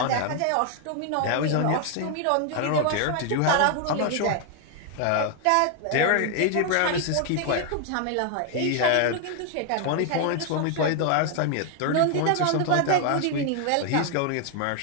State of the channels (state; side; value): different; both; correlation 0.00